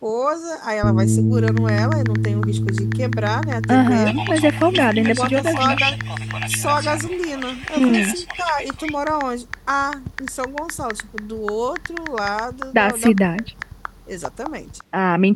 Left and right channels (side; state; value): both; identical; correlation 1.00